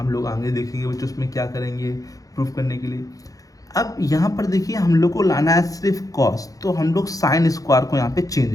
लोग आगे देखेंगे बच्चों उसमें क्या करेंगे प्रूफ करने के लिए। अब यहाँ पर देखिए हम लोग को लाना है सिर्फ कॉस, तो हम लोग साइन स्क्वायर को यहाँ पे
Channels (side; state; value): right; late; 0.17 ms